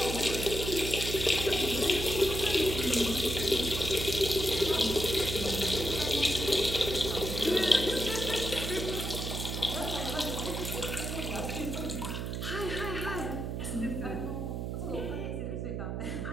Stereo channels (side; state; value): right; noise; hum, 3 dB below the sound